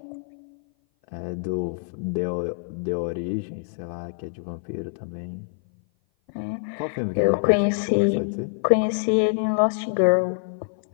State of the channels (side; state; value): right; silent; 56 dB below the other